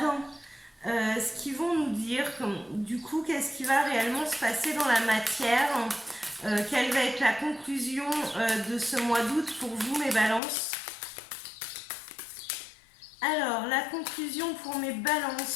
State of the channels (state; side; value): drops out; right; at 10.4 s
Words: ce qu'ils vont nous dire. Du coup, qu'est-ce qui va réellement se passer dans la matière, quelle va être la conclusion de ce mois d'août pour vous, mes balances. Alors, la conclusion pour mes